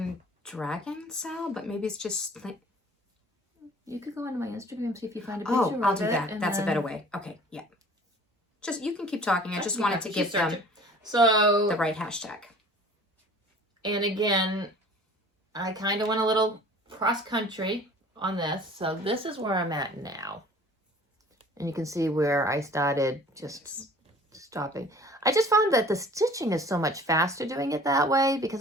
Dragon Cell, but maybe it's just. You could go onto my Instagram, see if you find a picture Oh, I'll of do it, that. and That's a then- better way. Okay, yeah. Just, you can keep talking. I just wanted to Keep give them searching. So, the right hashtag. and again, I kind of went a little cross-country on this. So this is where I'm at now. And you can see where I started just stopping. I just found that the stitching is so much faster doing it that way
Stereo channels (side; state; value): both; normal; correlation 0.48